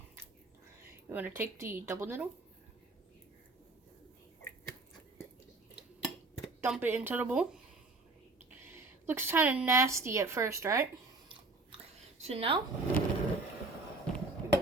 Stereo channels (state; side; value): quieter; left; 3.3 dB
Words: You want to take the double noodle. Dump it into the bowl. Looks kind of nasty at first, right? So now, we're